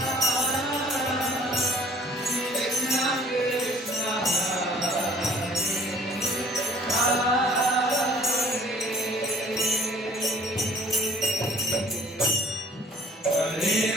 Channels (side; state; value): both; normal; correlation 0.53